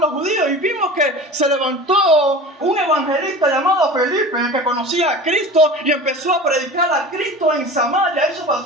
los judíos, y vimos que se levantó un evangelista llamado Felipe que conocía a Cristo y empezó a predicar a Cristo en Samaria. Eso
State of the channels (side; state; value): both; normal; correlation 0.36